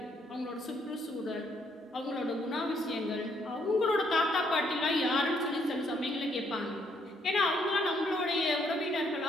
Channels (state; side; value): normal; both; correlation 0.70